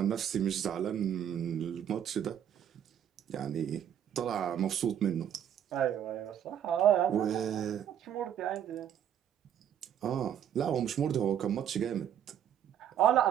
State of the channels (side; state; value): left; quieter; 9.7 dB